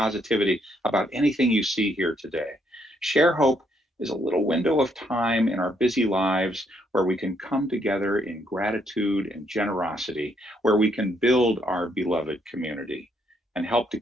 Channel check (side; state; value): both; normal; correlation 0.72